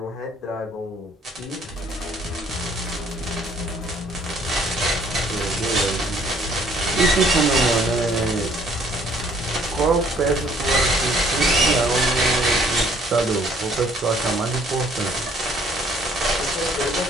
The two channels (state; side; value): normal; both; correlation 0.60